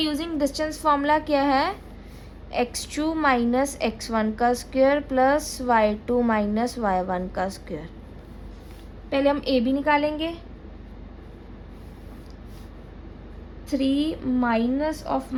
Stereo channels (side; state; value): both; identical; correlation 1.00